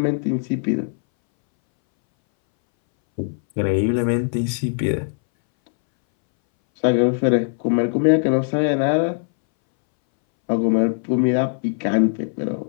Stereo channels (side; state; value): right; silent; 63 dB below the other